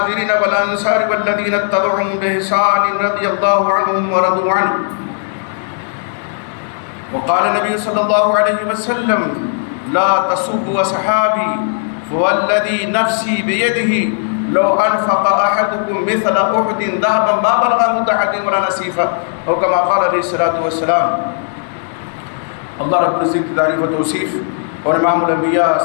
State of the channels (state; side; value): silent; right; digital silence